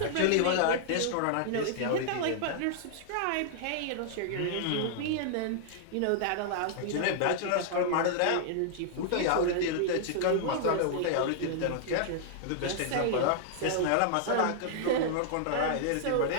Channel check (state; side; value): different; both; correlation -0.01